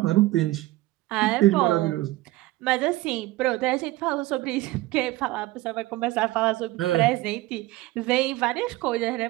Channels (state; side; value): quieter; left; 18.2 dB